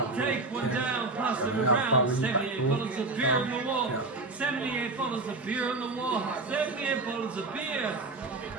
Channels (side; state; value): left; quieter; 3.3 dB